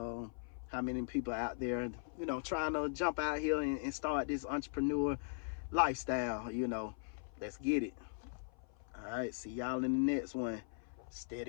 how many people out there, you know, trying to jump out here and start this entrepreneur lifestyle, you know. Let's get it. All right, see y'all in the next one.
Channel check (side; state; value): right; silent; 52 dB below the other